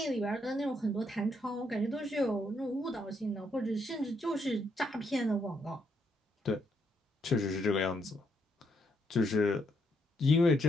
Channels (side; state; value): both; normal; correlation 0.75